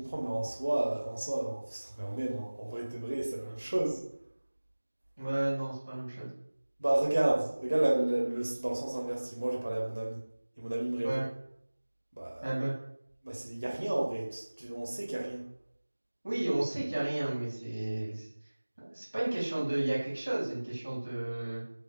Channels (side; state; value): both; inverted; correlation -1.00